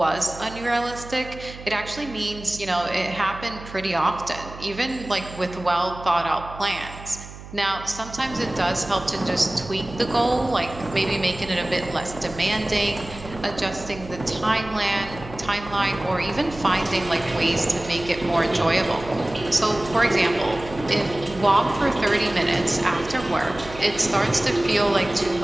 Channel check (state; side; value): noise; right; hum, 15 dB below the sound